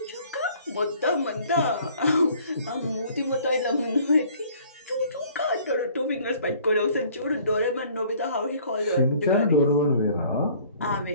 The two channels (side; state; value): both; inverted; correlation -0.55